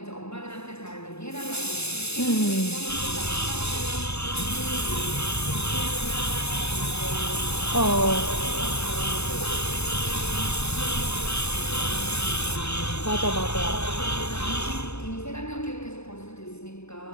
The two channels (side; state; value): right; late; 0.80 ms